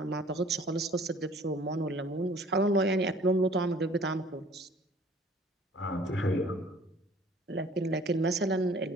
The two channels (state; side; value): normal; both; correlation 0.53